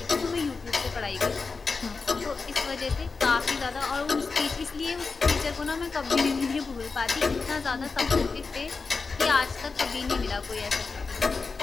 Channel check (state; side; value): quieter; right; 4.5 dB